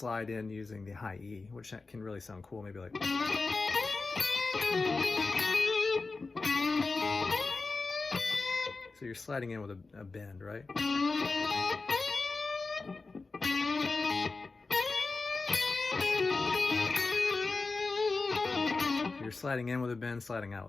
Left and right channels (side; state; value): right; quieter; 3.9 dB